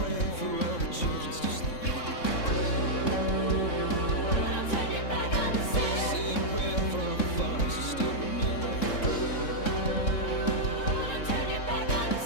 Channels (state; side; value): late; right; 3.6 ms